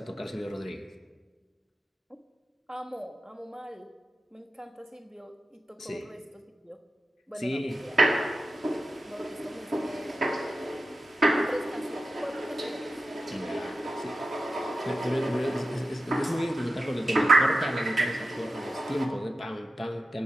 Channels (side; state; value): both; normal; correlation 0.92